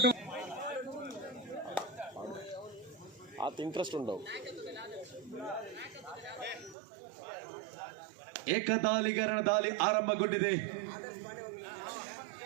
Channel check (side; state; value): left; drops out; at 6.8 s